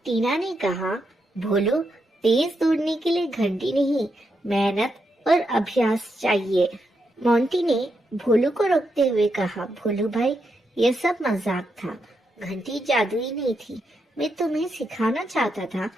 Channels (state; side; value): normal; both; correlation 0.82